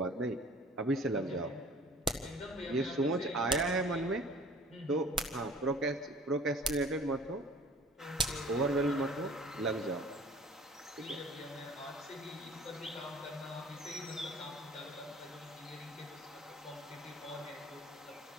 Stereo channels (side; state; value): both; normal; correlation 0.48